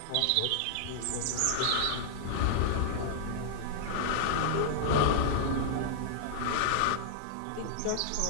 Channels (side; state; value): both; different; correlation -0.01